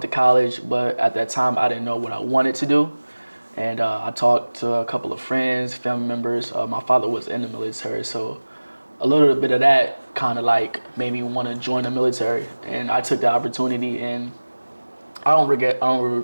to college, but at that time, I didn't know what I wanted to do. And I talked to a couple of friends, family members. My father was in the military, so a little bit of that kind of made me want to join the military. And I took the opportunity, and I don't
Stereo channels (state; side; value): inverted; both; correlation -1.00